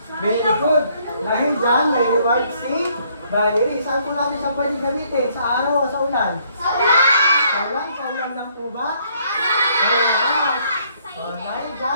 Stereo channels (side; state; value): both; inverted; correlation -0.67